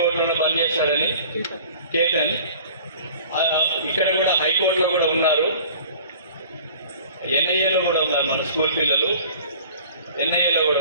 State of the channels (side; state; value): both; inverted; correlation -0.47